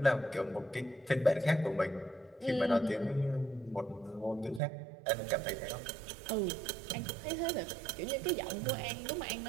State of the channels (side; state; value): left; drops out; at 4.6 s